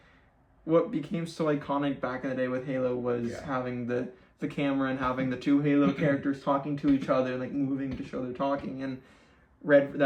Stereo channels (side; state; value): both; identical; correlation 1.00